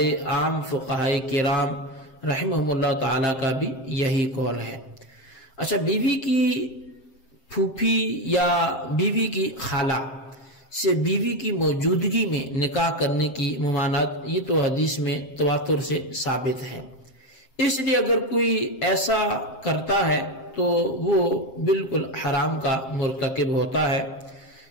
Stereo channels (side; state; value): right; late; 7.6 ms